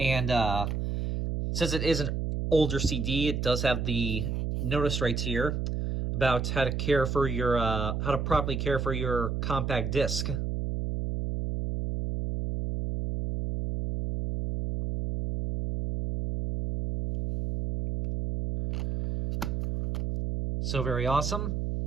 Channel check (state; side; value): noise; right; hum, 2 dB below the sound